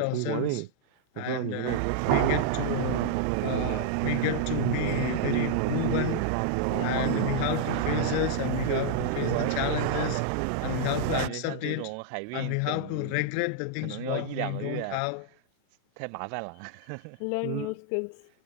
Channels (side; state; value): both; different; correlation -0.01